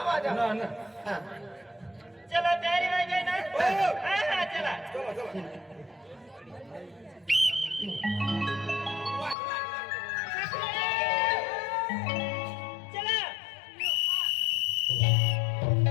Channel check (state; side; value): drops out; right; at 9.3 s